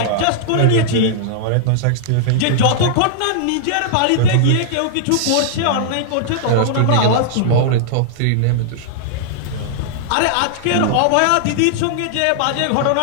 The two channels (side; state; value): both; different; correlation -0.01